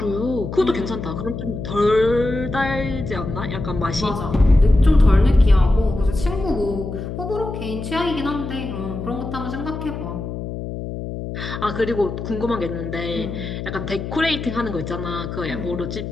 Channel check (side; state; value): left; noise; hum, 7 dB below the sound